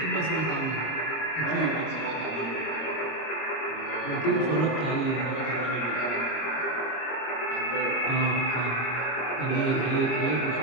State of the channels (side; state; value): right; late; 25 ms